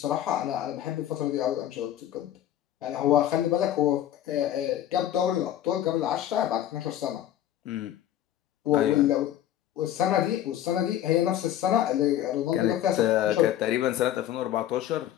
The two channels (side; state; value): right; quieter; 11.8 dB